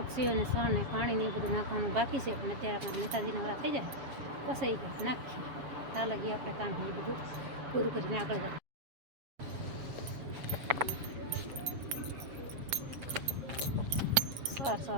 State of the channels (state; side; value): late; left; 7.4 ms